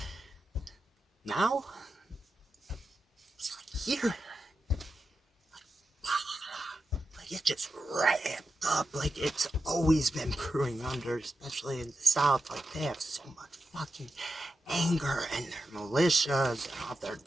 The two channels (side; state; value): both; normal; correlation 0.89